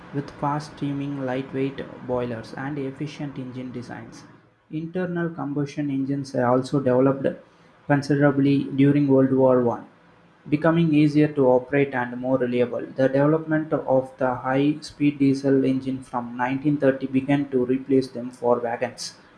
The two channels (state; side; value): identical; both; correlation 1.00